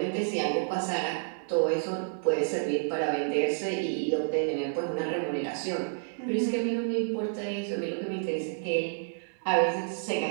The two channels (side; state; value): left; silent; digital silence